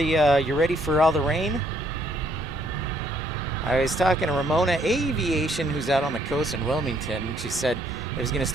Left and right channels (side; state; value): both; normal; correlation 0.68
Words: you ready for all the rain? I was talking to Ramona Aviation, who's out on the coast in Wilmington. She said it was going to